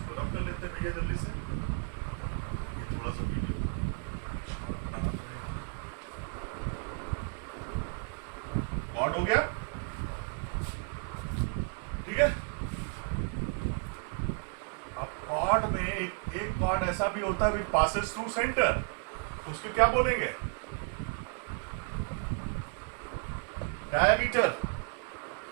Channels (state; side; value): quieter; left; 38.2 dB